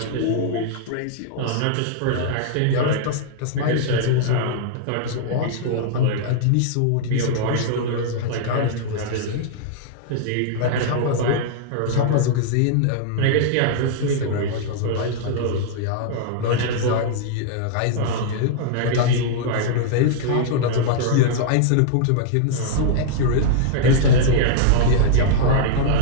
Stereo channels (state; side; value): different; both; correlation -0.01